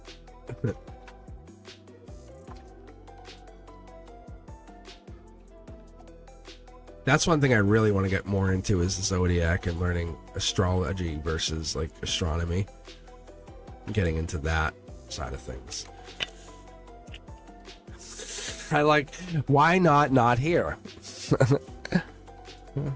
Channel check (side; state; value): both; identical; correlation 1.00